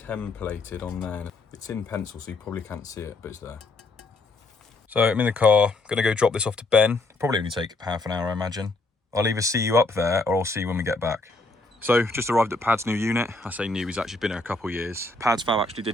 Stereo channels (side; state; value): right; quieter; 3.1 dB